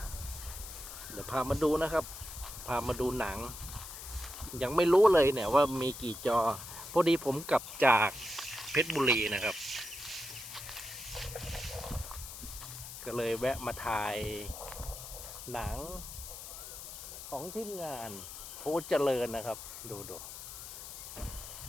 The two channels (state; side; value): noise; left; hiss, 11 dB below the sound